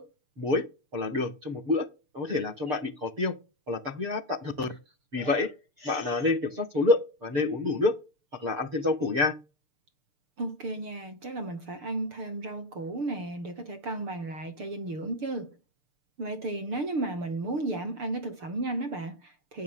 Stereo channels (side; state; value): left; late; 6.7 ms